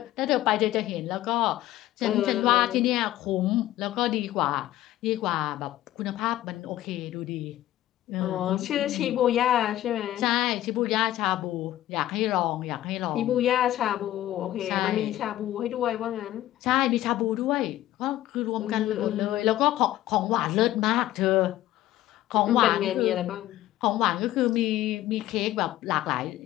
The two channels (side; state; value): right; quieter; 14.4 dB